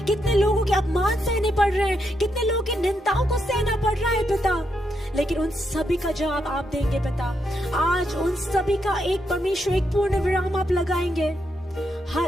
कितने लोगों के अपमान सहने पड़ रहे हैं, कितने लोगों की निंदाओं को सहना पड़ रहा है पिता, लेकिन उन सभी का जवाब आप देंगे पिता। आज उन सभी का एक परमेश्वर एक पूर्ण विराम आप लगाएंगे।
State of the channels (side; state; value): both; normal; correlation 0.81